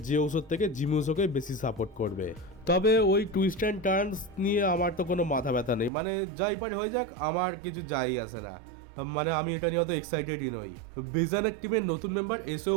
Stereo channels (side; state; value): left; drops out; at 5.9 s